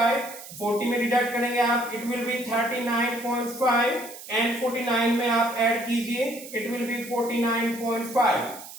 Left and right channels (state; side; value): noise; right; hiss, 14 dB below the sound